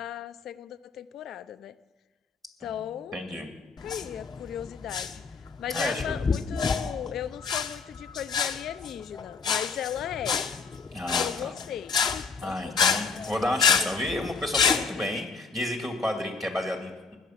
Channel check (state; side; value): quieter; right; 4.9 dB